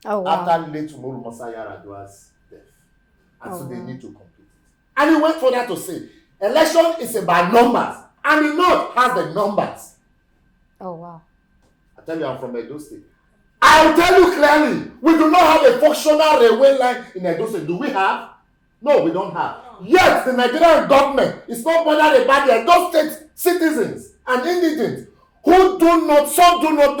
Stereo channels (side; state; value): both; identical; correlation 1.00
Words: Oh, wow. After late Umaru Musa Yar'Adua's death. And so they need to complete it. And he went further to say, election is about numbers. And the north has the numbers. Oh, wow. I tell you, I'm from Edo State. I'll tell you clearly, we do not have a functional railway line in Edo State. Do we have? No, we don't have. Yet, the Nigerian government is not bothered about the Edo State citizens and indigents who some do not